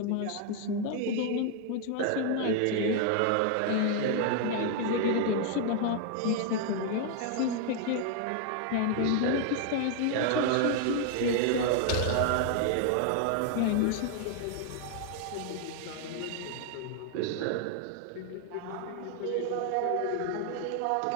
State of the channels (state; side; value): different; both; correlation 0.00